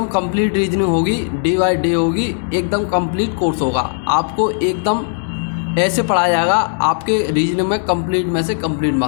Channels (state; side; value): silent; right; 64 dB below the other